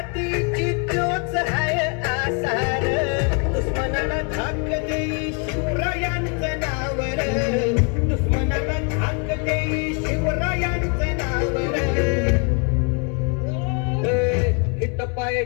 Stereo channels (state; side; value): quieter; right; 35.7 dB